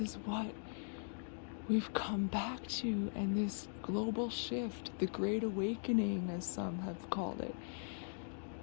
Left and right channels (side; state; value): right; silent; digital silence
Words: is what we've come back to, and this global shift, the Great Awakening, as some have called it.